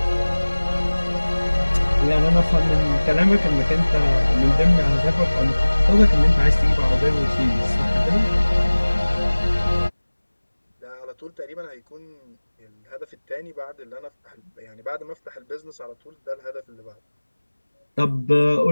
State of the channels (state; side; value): inverted; both; correlation -1.00